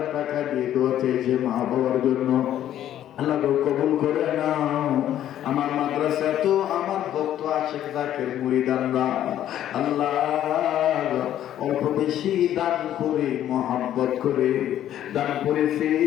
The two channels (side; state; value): right; quieter; 11.6 dB